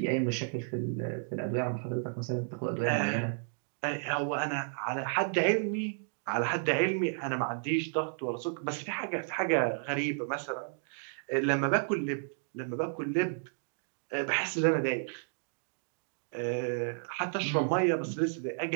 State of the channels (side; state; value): left; silent; digital silence